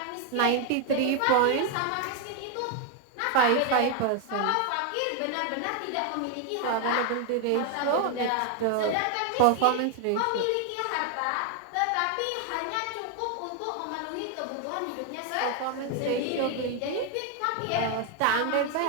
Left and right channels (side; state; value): both; different; correlation 0.01